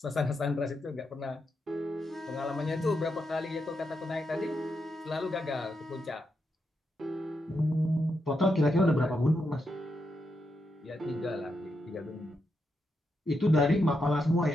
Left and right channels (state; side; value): normal; both; correlation 0.84